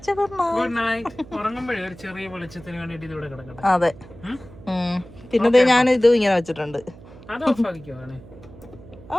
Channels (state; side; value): noise; right; hum, 20 dB below the sound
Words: ഗുഡ് നൈറ്റ്. Good night. ഉറങ്ങുമ്പോഴേ ഒരു ചെറിയ വെളിച്ചത്തിന് വേണ്ടിട്ട് ഇത് ഇവിടെ കിടക്കട്ടെ. അതെ. പിന്നെ ഞാൻ ഇതും ഇങ്ങനെ വെച്ചിട്ടുണ്ട്. അത് ഓഫ് ആക്കിക്കോ.